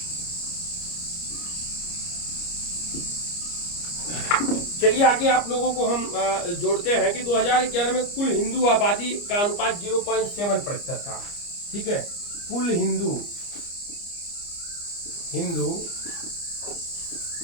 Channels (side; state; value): right; late; 29 ms